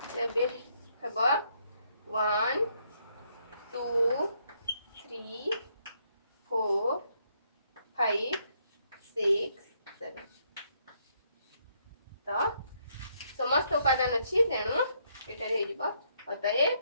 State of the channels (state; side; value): inverted; both; correlation -0.73